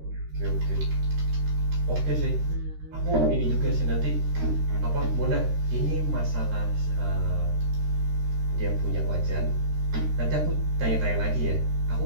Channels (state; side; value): late; left; 13 ms